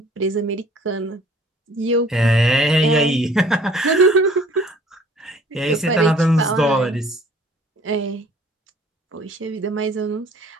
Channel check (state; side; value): normal; both; correlation 0.54